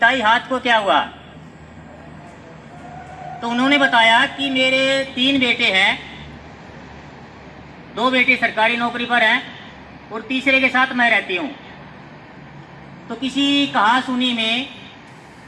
हाथ को क्या हुआ। तो उन्होंने बताया कि मेरे 3 बेटे हैं, 2 बेटे सरकारी नौकरी पर हैं और तीसरे के साथ मैं रहती हूँ। तो किसी कहा सुनी में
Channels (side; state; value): both; identical; correlation 1.00